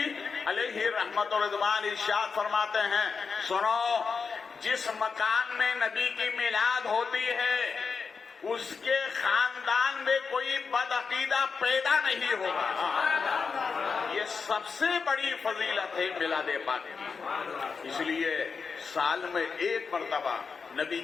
علیہ رحمت و رضوان ارشاد فرماتے ہیں، سنو، جس مکان میں نبی کی میلاد ہوتی ہے اس کے خاندان میں کوئی بدعقیدہ پیدا نہیں ہوگا۔ یہ سب سے بڑی فضیلت ہے میلاد پاک کی، اس لیے سال میں ایک مرتبہ نبی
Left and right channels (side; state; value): right; quieter; 5.3 dB